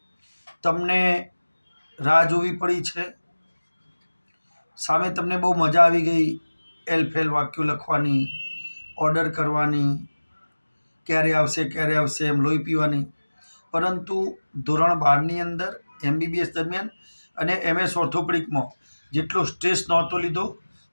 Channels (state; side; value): inverted; both; correlation -1.00